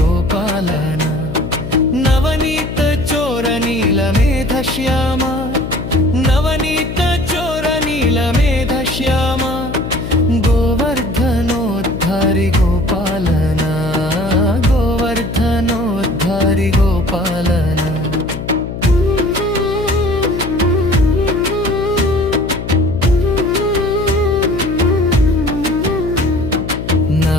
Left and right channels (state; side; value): noise; left; hum, 8 dB below the sound